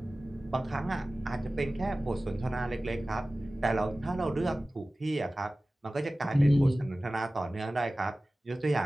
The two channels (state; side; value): normal; both; correlation 0.97